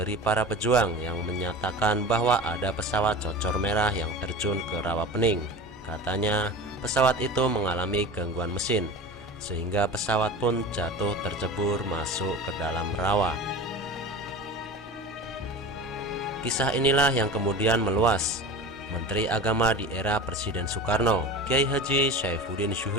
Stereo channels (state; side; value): normal; both; correlation 0.32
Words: para pejuang yang menyatakan bahwa ada pesawat Cocor Merah yang terjun ke Rawapening. Katanya pesawat itu mengalami gangguan mesin, sehingga pesawat pun jatuh tercebur masuk ke dalam rawa. Kisah inilah yang kemudian meluas. Menteri Agama di era Presiden Soekarno, Kiai Haji Saifuddin